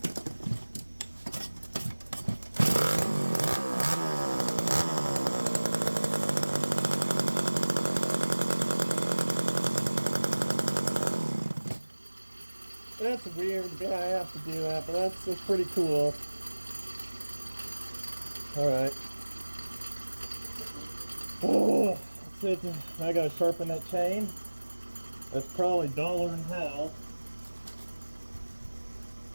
That's weird. Yeah, I have to do that, but that's pretty cool. All right. Oh. I gotta sharpen that chain. That's probably duller than hell.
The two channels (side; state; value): both; inverted; correlation -1.00